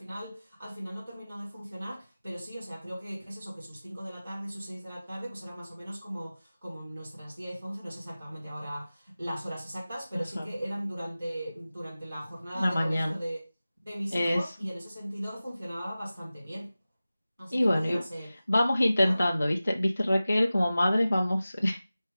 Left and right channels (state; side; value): inverted; both; correlation -0.96